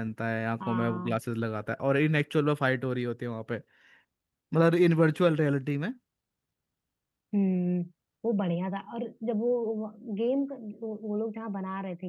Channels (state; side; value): identical; both; correlation 1.00